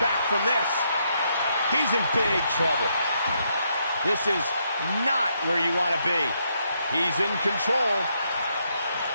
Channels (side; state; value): both; inverted; correlation -0.77